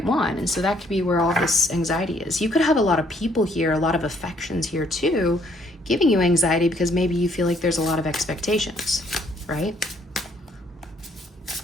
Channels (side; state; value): both; normal; correlation 0.66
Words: one. And so that could be where all this anxiety is. You could have a lot of people here, a lot of affections here too, giving you anxiety because maybe you feel like there's a lot of expectations, right?